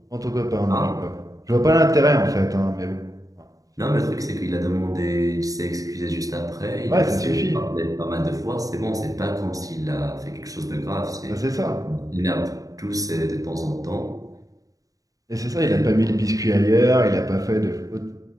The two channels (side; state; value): left; late; 0.17 ms